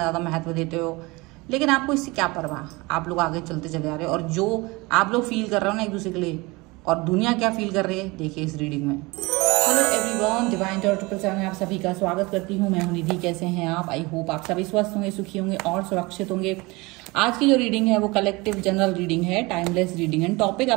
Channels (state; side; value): quieter; left; 24.0 dB